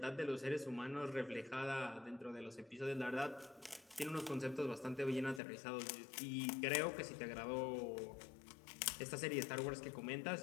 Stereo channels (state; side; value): drops out; right; at 5.4 s